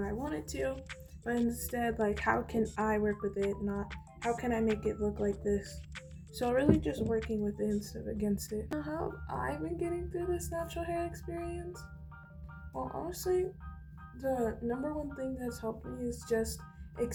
I want it to? But instead, like, how can I work with it? Not how can I make it look like this? So really just working with it instead of against it. Now, how have I been getting through this natural hair experience? Well, honestly, the number one thing that's helped me is just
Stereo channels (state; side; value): identical; both; correlation 1.00